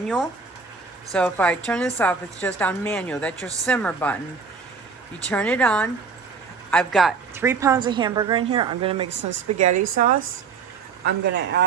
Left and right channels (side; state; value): left; quieter; 5.3 dB